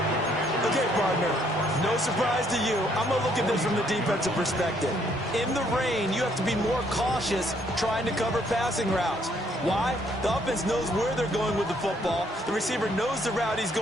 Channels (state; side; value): normal; both; correlation 0.68